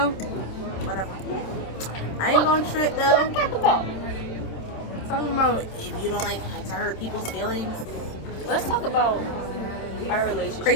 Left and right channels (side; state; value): right; late; 27 ms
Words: Whatever. I ain't gonna trip though. Talking about if you don't like to hurt people's feelings. Let's talk about our relationship.